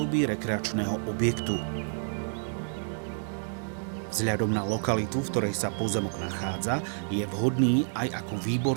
rekreačného objektu. Vzhľadom na lokalitu, v ktorej sa pozemok nachádza, je vhodný aj ako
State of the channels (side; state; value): left; silent; 58 dB below the other